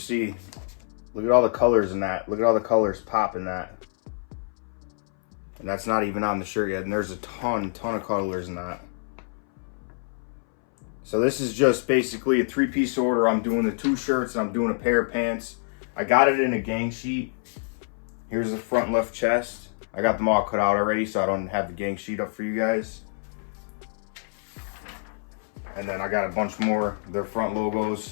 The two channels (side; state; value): right; silent; 61 dB below the other